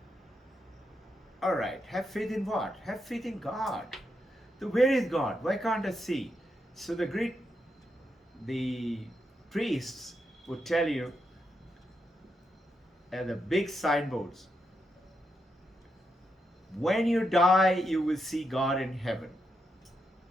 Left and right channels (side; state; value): both; normal; correlation 0.83